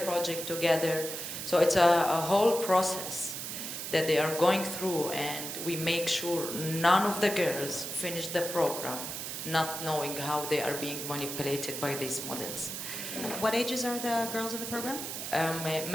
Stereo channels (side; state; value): right; noise; hiss, 6 dB below the sound